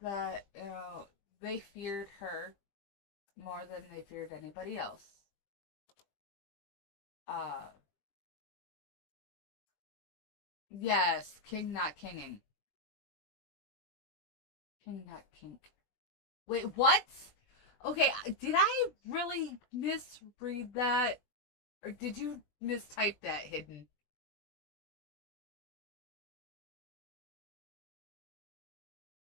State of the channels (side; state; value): right; late; 20 ms